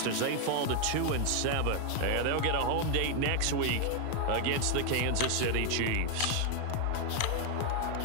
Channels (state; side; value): different; both; correlation 0.00